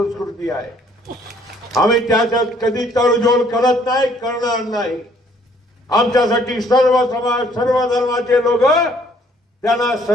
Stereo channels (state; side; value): normal; both; correlation 0.62